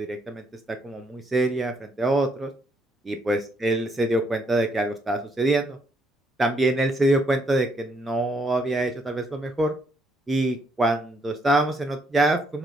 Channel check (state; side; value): normal; both; correlation 0.72